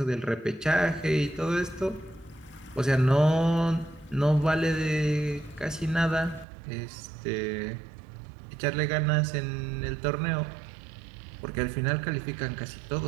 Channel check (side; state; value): left; drops out; at 6.5 s